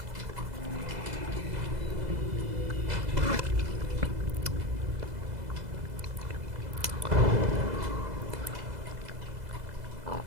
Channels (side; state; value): left; late; 2.0 ms